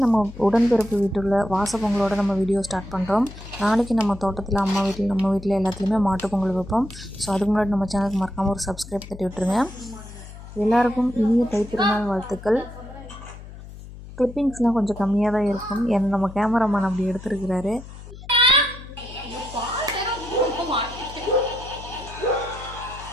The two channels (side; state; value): left; noise; hum, 15 dB below the sound